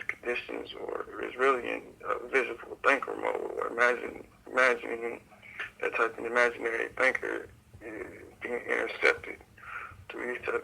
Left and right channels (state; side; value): identical; both; correlation 1.00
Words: conditions, or is really in visual thinker mode, or imagining that type of imaginary thinker is being intercepted through these